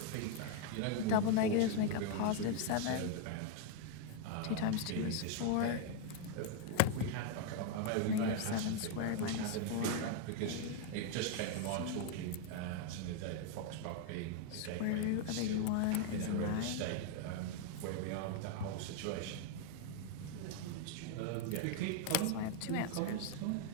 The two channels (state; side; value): different; both; correlation 0.00